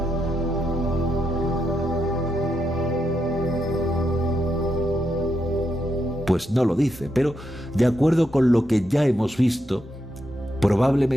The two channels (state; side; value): normal; both; correlation 0.82